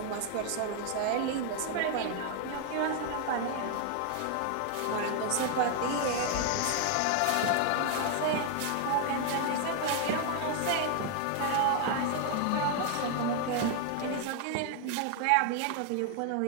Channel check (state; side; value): different; both; correlation 0.00